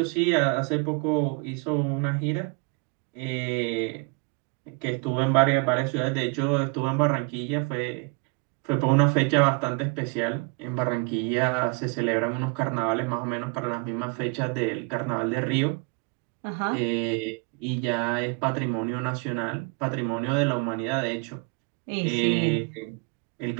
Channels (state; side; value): quieter; left; 32.0 dB